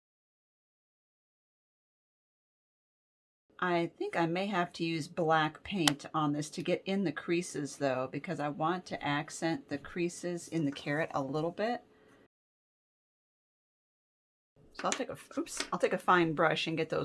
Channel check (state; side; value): identical; both; correlation 1.00